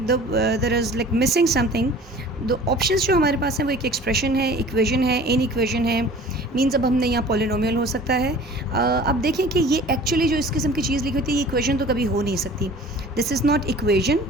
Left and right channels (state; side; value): normal; both; correlation 0.45